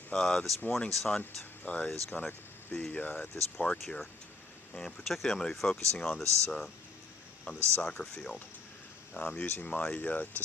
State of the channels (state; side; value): quieter; right; 3.7 dB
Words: This morning's hunt is going to be at this park here, and particularly I'm going to be focusing on this soccer field. I'm using my